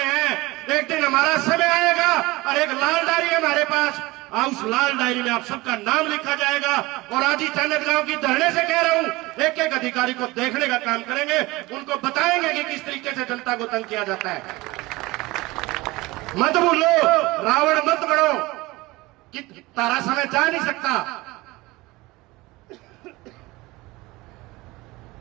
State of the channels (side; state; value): left; quieter; 21.1 dB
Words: हैं, एक दिन हमारा समय आएगा और एक लाल डायरी है हमारे पास, उस लाल डायरी में आप सबका नाम लिखा जाएगा। और आज ही चन्नत गांव की धरने से कह रहा हूं, एक एक अधिकारी को देखने का काम करेंगे, उनको बताएंगे कि किस तरीके से जनता को तंग किया जाता है। मत भूलो, रावण मत बनो कि तारा समय जा नहीं सकता।